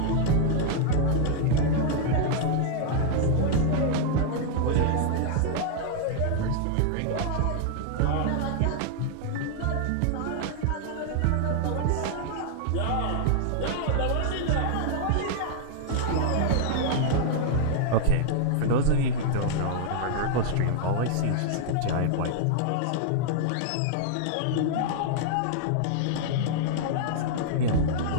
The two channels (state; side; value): different; both; correlation -0.01